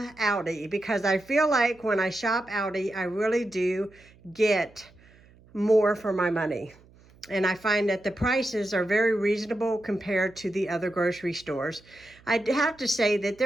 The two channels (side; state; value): right; noise; hum, 27 dB below the sound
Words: Aldi because I feel like when I shop Aldi, I really do get more for my money. And I find that the prices are very reasonable compared to the other grocery stores. I have to say that